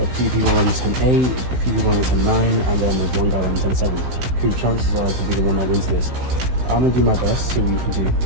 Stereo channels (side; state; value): left; late; 16 ms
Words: a few people running 10:8, a few people running 10:9, and then there's one guy running 10:7. The chances are to be the one that wins this. I'm gonna do my best, see what we can do.